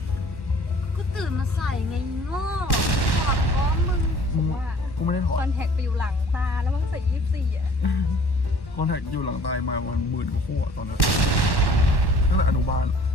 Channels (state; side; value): late; right; 1.1 ms